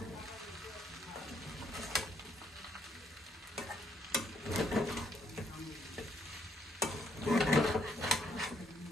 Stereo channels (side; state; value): both; normal; correlation 0.70